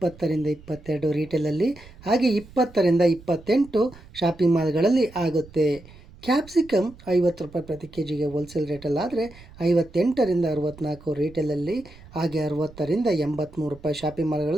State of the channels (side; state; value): right; noise; rumble, 21 dB below the sound